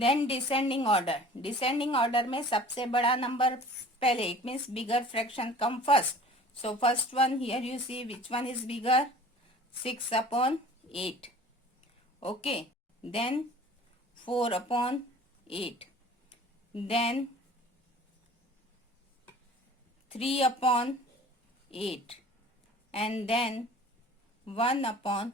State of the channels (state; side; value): normal; both; correlation 0.45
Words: descending order. Descending order में सबसे बड़ा number पहले, it means bigger fraction come first. So first one, here you see which one is bigger, 6 upon 8. Okay. Then 4 upon 8. Then 3 upon 8. And then 1 upon